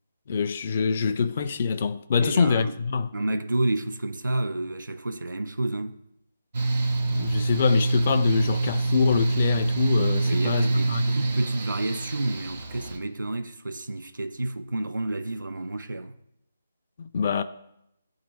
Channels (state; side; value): inverted; both; correlation -0.86